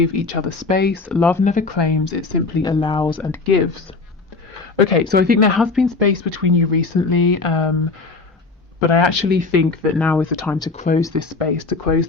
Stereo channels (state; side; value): quieter; right; 3.9 dB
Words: each other space. Love never claims, it simply allows and gives. Okay, so I think there has been space between you recently, but I actually think that now is the time to close this space, to close